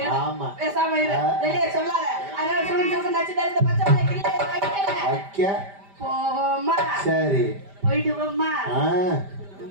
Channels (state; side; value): late; left; 5.1 ms